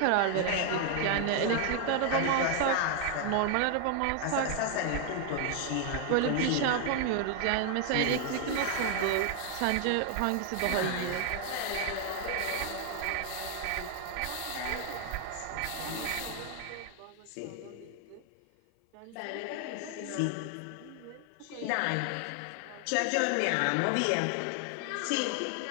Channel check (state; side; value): different; both; correlation 0.00